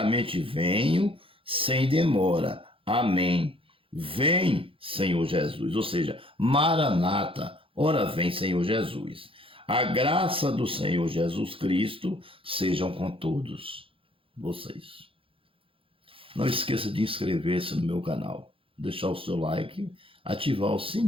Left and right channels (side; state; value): left; late; 0.26 ms